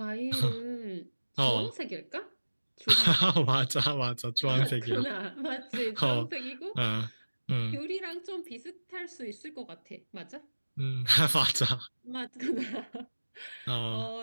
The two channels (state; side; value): inverted; both; correlation -1.00